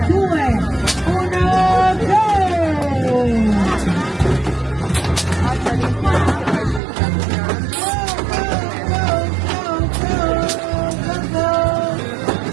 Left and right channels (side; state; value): left; drops out; at 6.8 s